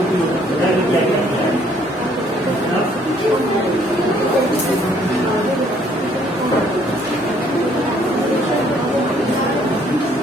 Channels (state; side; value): normal; both; correlation 0.63